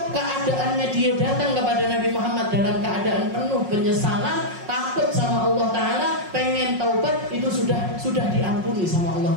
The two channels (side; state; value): left; late; 5.5 ms